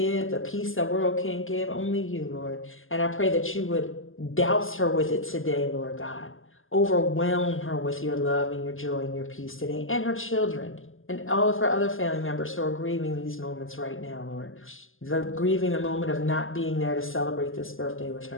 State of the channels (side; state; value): right; late; 0.59 ms